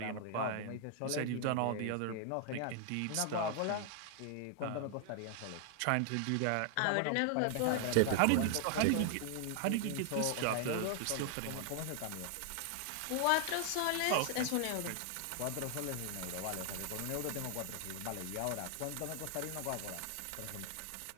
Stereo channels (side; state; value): both; different; correlation 0.00